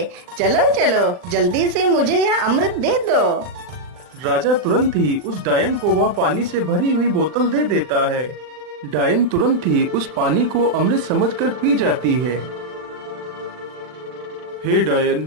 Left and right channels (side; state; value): left; late; 40 ms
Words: चलो चलो, जल्दी से मुझे यह अमृत दे दो। राजा तुरंत ही उस डायन को वह पानी से भरी हुई बोतल दे देता है। डायन तुरंत ही उस पानी को अमृत समझकर पी जाती है। हे